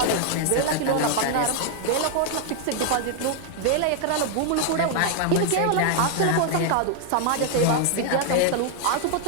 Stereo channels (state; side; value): different; both; correlation 0.00